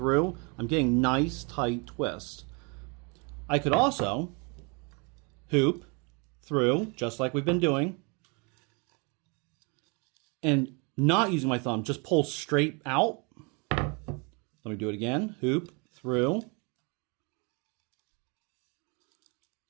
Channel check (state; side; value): quieter; left; 32.4 dB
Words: I'm getting nice tight twist. I could also hoop through, just like we've been doing, and not using my thumb, just pull straight out. Let me do it again. Hoop through.